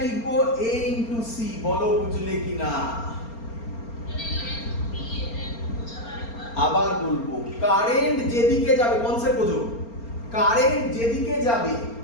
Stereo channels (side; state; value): right; late; 4.3 ms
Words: লিখবো a ইনটু সি। বলো বুঝলে কিনা? আবার বলবো, কারেন্ট যেদিকে যাবে, কনসেপ্ট বোঝো, কারেন্ট যেদিকে যাবে